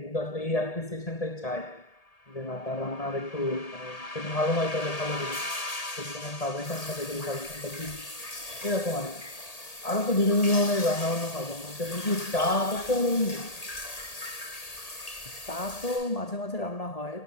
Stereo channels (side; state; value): right; late; 1.8 ms